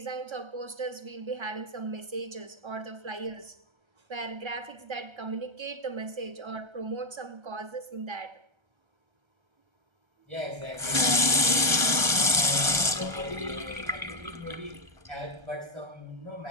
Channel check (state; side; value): late; left; 1.3 ms